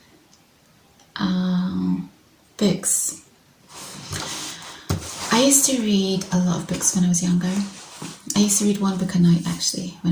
Books. I used to read a lot of books when I was younger. I used to read one book a night actually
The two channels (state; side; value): identical; both; correlation 1.00